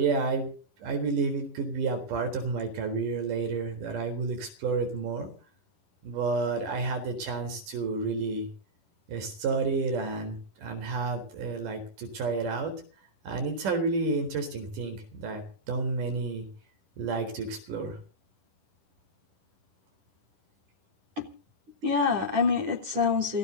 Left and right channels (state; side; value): late; left; 10 ms